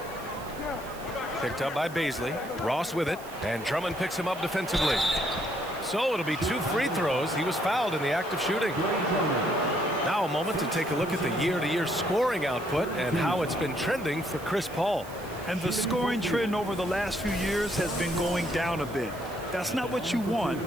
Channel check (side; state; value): right; noise; hiss, 19 dB below the sound